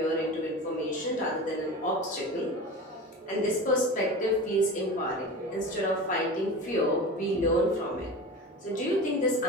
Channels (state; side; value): normal; both; correlation 0.32